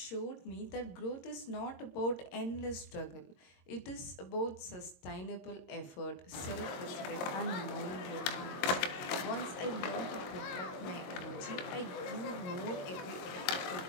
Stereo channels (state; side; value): late; right; 22 ms